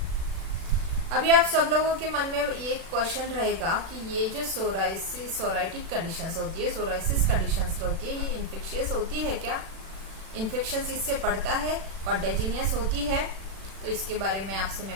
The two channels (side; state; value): left; late; 36 ms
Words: अभी आप सब लोगों के मन में ये क्वेश्चन रहेगा कि ये जो सोराइटिक कंडीशंस होती है, सोराइसिस कंडीशंस होती है, ये इन्फेक्शियस होती है क्या? इन्फेक्शन इससे बढ़ता है, कॉन्टेजिनियस होती है? तो इसके बारे में आपसे